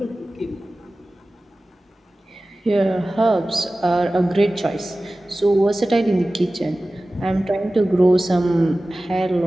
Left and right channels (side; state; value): both; normal; correlation 0.97